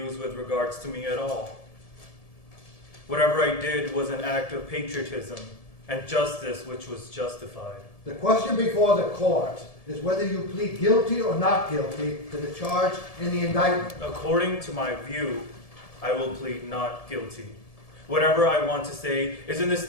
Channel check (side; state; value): right; late; 1.7 ms